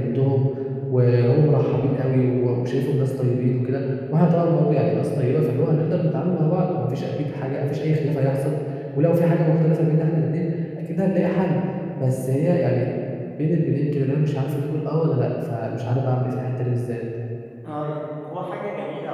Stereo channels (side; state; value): both; identical; correlation 1.00